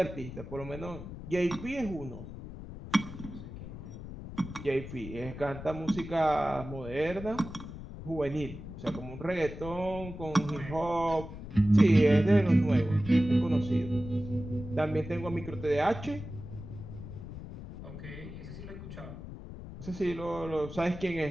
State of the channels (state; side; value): noise; left; rumble, 11 dB below the sound